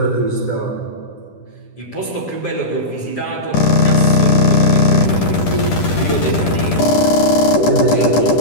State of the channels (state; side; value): late; right; 10 ms